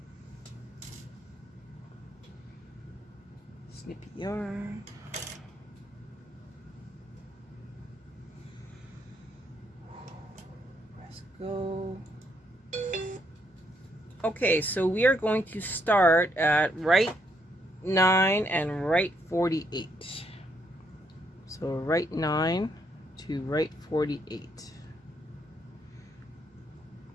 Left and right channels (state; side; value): normal; both; correlation 0.74